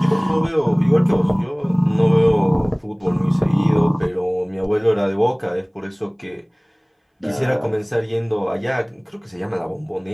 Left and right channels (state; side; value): identical; both; correlation 1.00